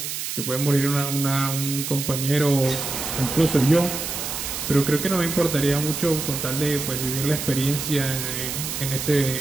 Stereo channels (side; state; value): right; noise; hiss, 4 dB below the sound